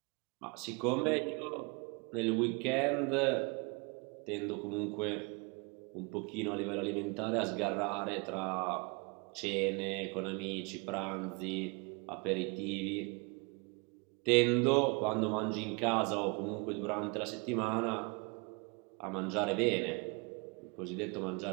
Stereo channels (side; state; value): left; quieter; 30.8 dB